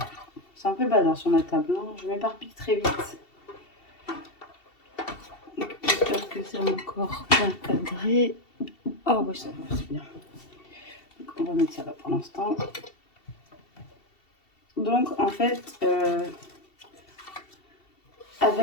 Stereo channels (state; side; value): late; right; 2.7 ms